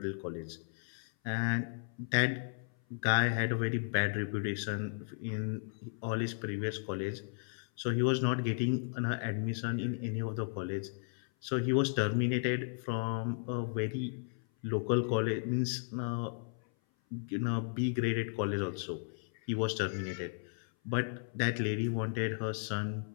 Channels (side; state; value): right; silent; 55 dB below the other